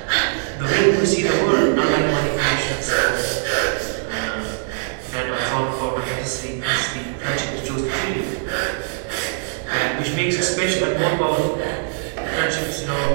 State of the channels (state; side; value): silent; left; digital silence